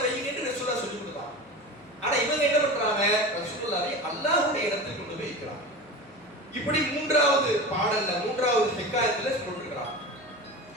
வைங்க என்று ரசூலுல்லாஹ் சொல்லி கொடுத்தாங்க. ஆனா இவங்க என்ன பண்றாங்க? ரசூலுல்லாஹ்வை அல்லாஹ்வுடைய இடத்துக்கு கொண்டு போய் வைக்கிறாங்க. இப்படி மூன்றாவது பாடல்ல மூன்றாவது ஹிகாயத்துல சொல்லிருக்காங்க.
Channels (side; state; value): left; noise; hum, 27 dB below the sound